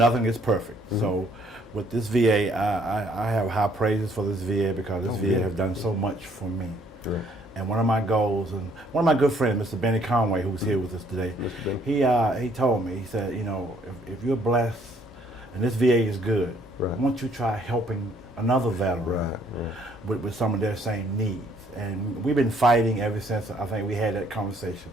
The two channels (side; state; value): both; normal; correlation 0.64